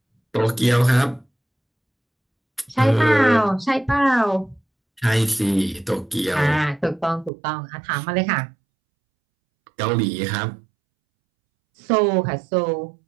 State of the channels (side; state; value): left; drops out; at 7.3 s